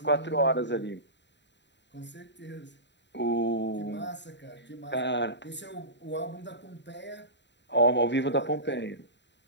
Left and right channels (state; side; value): late; right; 0.52 ms